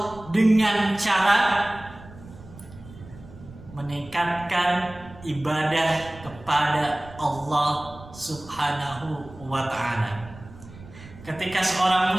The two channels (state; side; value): noise; right; rumble, 18 dB below the sound